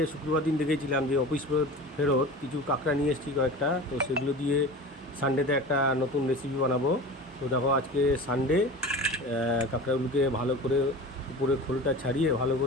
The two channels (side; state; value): both; normal; correlation 0.34